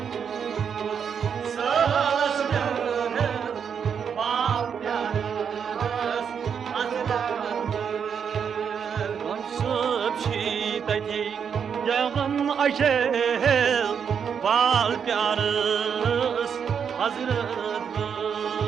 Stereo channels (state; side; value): quieter; left; 7.2 dB